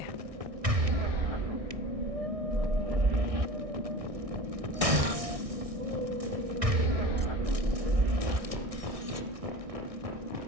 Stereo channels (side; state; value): left; late; 1.6 ms